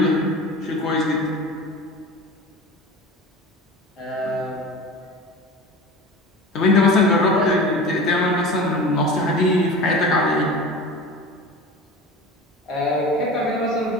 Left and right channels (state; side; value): normal; both; correlation 0.34